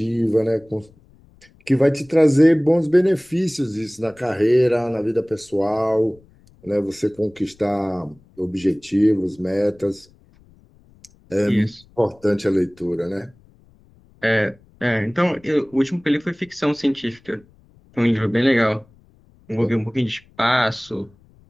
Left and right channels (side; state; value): left; noise; rumble, 29 dB below the sound